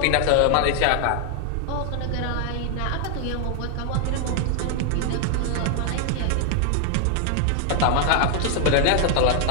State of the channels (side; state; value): both; different; correlation 0.00